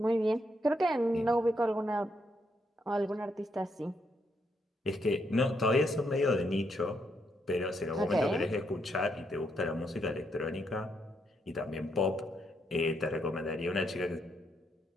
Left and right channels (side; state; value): both; normal; correlation 0.77